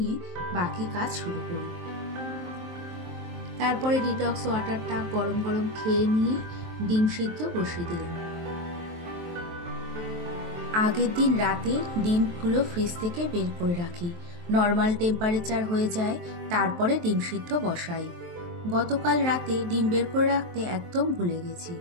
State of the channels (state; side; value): late; left; 23 ms